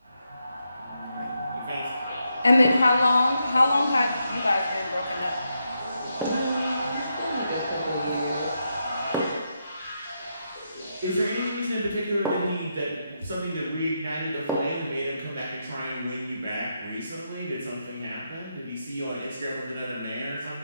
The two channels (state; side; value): inverted; both; correlation -0.83